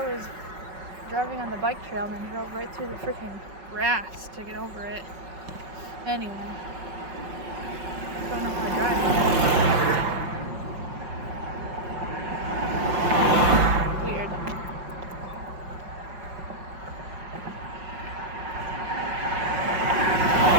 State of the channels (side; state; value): left; late; 5.4 ms